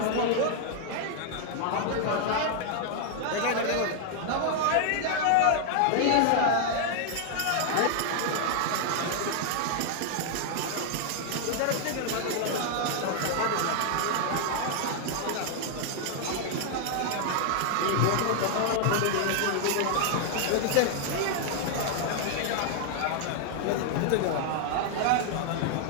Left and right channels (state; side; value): different; both; correlation 0.00